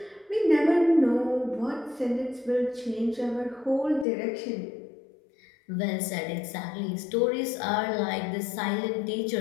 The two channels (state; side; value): drops out; right; at 4.0 s